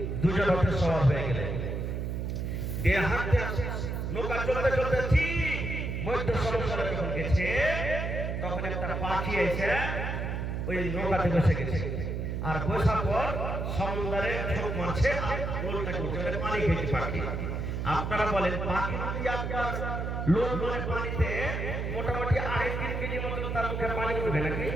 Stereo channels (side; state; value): right; noise; hum, 2 dB below the sound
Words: দুজন হতে সওয়ার হয়ে গেলেন। এ হাঁটতে নৌকা চলতে চলতে ঠিক মধ্য সমুদ্রে যখন গেছে, তখন একটা পাখি এসে ওই নৌকাতে বসে গেছে। আর বসার পর সমুদ্রে ছোট মারছে আর লোলটা করছে, পানি খেয়েছে পাখি। আপনারা বলেন পাখি যদি আপনার লোল মানে পানিতে মোটামুটি 3.5 কেজি মতো তার মুখে পানি উঠবে নাকি?